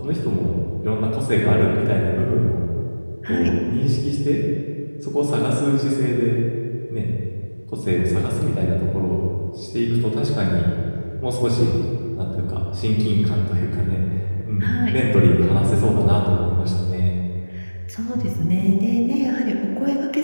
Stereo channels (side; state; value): both; inverted; correlation -1.00